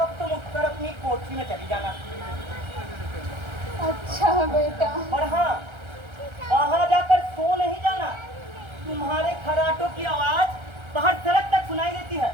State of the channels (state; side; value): late; left; 1.3 ms